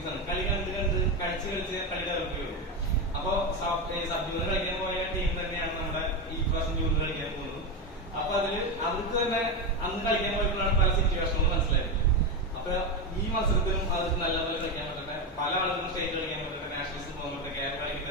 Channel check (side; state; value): both; normal; correlation 0.13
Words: ആണ്. കളി കണ്ട് കളിച്ച് കളി ഡെവലപ്പ് ചെയ്യുള്ളൂ. അപ്പൊ സബ്ജൂണിയർ കളിക്കാൻ പോയ ടീം തന്നെയാണ് നമ്മുടെ ഈ പ്രാവശ്യം ജൂണിയർ കളിക്കാൻ പോകുന്നത്. അപ്പൊ അവർക്ക് തന്നെ അന്ന് കളിക്കാൻ പോയപ്പോഴാണ് പല സിറ്റുവേഷനുകളും മനസ്സിലായത്. അപ്പൊ ഈ മത്സരത്തിലും അവർക്ക് നല്ലപോലെ കളിക്കാൻ പറ്റട്ടെ. പല ആളുകളും സ്റ്റേറ്റ് കളിക്കാൻ പറ്റട്ടെ, നാഷണൽസ് പോകാൻ പറ്റട്ടെ, കേരള